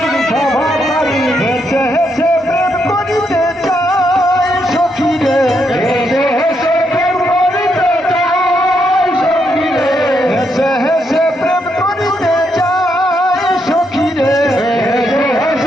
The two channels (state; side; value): normal; both; correlation 0.78